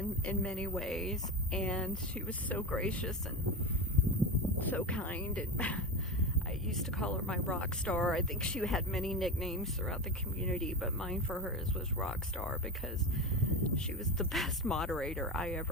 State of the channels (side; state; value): both; normal; correlation 0.22